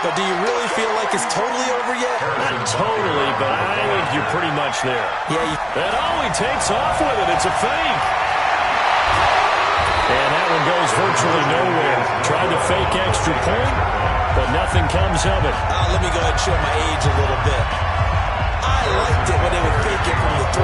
But do you really feel like it's totally over yet? Not totally, but I think you're pretty much there. Yeah. And he takes off with it. It's a fake. And that one goes virtually nowhere. Tried to fake extra point, but nothing comes of it. Let me go ahead and show my age a little bit. I liked it when they would fake it from the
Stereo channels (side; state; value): both; identical; correlation 1.00